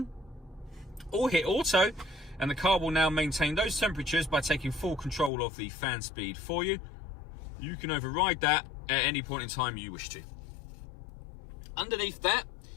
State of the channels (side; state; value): right; drops out; at 5.3 s